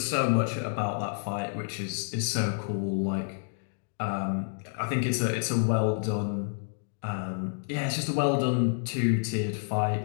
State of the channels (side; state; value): right; silent; digital silence